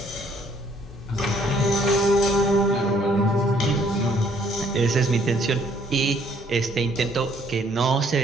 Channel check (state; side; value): normal; both; correlation 0.64